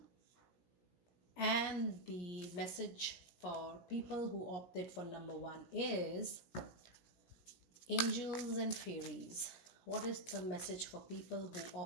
and the message for people who opted for number 1 is Angels and Fairies. What is the message for people who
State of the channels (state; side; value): late; right; 16 ms